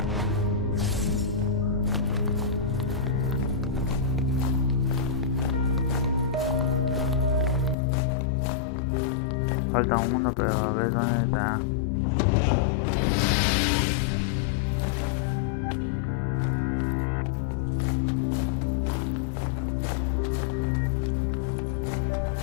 Falta uno, pero a ver dónde está.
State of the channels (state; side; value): drops out; right; at 7.8 s